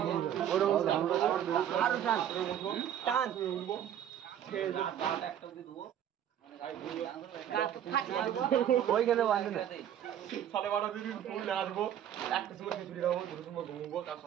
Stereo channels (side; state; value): left; quieter; 10.2 dB